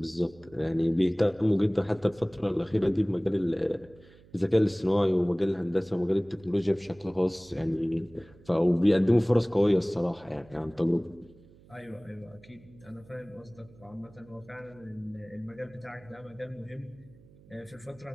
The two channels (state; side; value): noise; right; hum, 25 dB below the sound